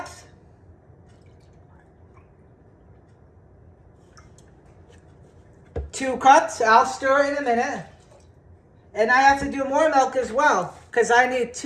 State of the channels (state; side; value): identical; both; correlation 1.00